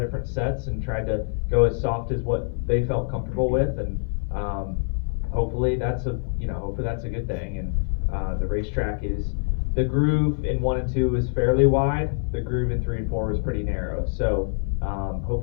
different sets and tried to go as soft as what they felt comfortable with. And hopefully that's a good thing. And the racetrack the groove in 1 and 2 is fairly wide. The groove in 3 and 4 was pretty narrow. So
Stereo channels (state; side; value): silent; right; 62 dB below the other